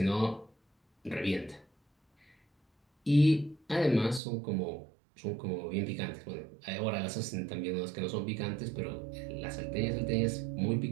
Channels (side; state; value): left; drops out; at 4.2 s